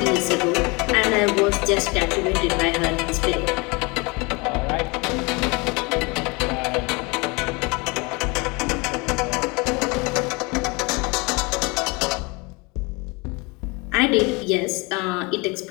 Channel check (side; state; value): right; quieter; 27.5 dB